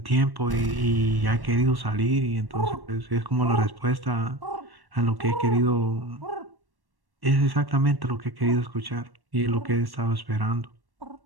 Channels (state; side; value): late; left; 1.1 ms